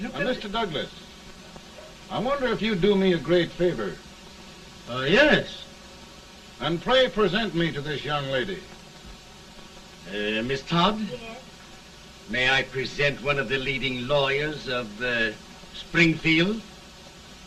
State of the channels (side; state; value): both; identical; correlation 1.00